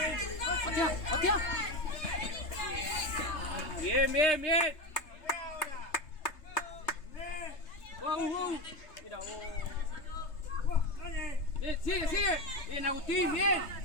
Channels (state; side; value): late; right; 3.3 ms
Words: Patea, patea. Bien, bien, bien. Wow. Mira, Bien, sigue, sigue. Bien, Agustín, bien.